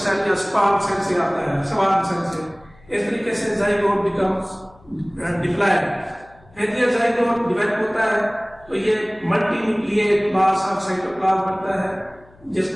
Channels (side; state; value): left; noise; hum, 27 dB below the sound